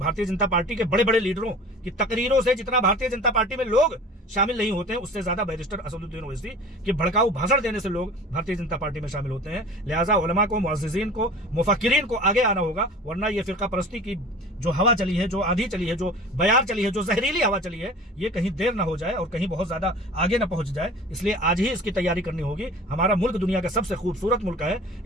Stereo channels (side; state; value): both; normal; correlation 0.41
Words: जनता पार्टी के बड़े बड़े लीडरों की तकरीरों से जितना भारतीय जनता पार्टी में लोग शामिल नहीं होते हैं, उससे ज्यादा बैरिस्टर असदुद्दीन ओवैसी के भड़काऊ भाषण देने से लोग भारतीय जनता पार्टी में शामिल होते हैं। लिहाजा उलमा को, मुअज़्ज़िज़ीन को, मुफक्किरीन को आगे आना होगा, वरना ये फिरका परस्ती की जो हवा चली है, जो आंधी चली है, जो बयार चली है, जो जहरीली हवा चली है, ये कहीं देर ना हो जाए और कहीं बहुत ज्यादा आगे ना पहुंच जाए। इसलिए आज ही इसकी तैयारी करनी होगी। हमारा मुल्क दुनिया का सबसे खूबसूरत मुल्क है।